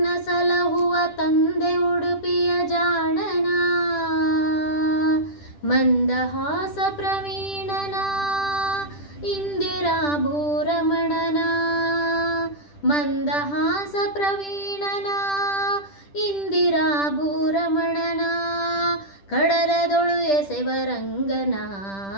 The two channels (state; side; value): late; right; 10 ms